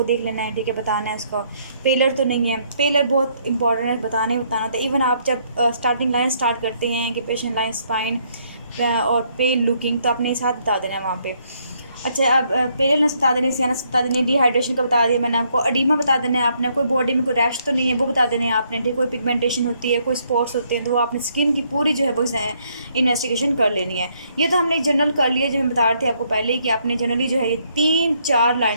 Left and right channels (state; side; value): inverted; both; correlation -0.71